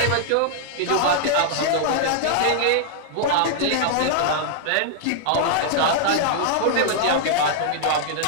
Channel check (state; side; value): different; both; correlation -0.01